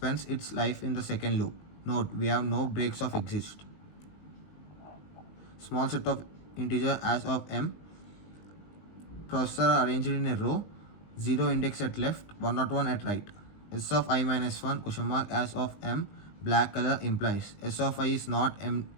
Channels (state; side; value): late; right; 20 ms